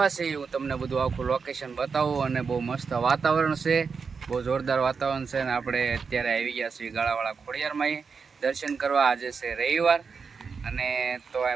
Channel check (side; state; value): left; quieter; 5.4 dB